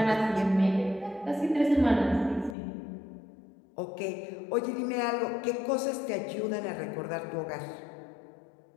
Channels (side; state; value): right; drops out; at 2.6 s